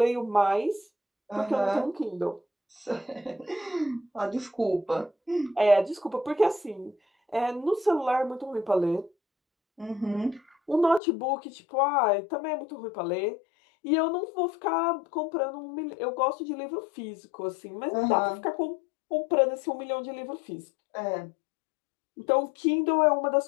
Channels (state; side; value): drops out; right; at 11.0 s